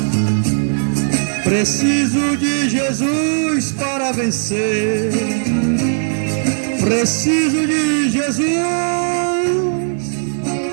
Preciso de Jesus para vencer. Preciso de Jesus.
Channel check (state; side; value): silent; left; 62 dB below the other